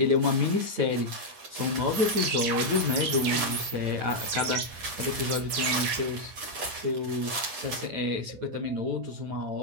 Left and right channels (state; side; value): late; left; 9.2 ms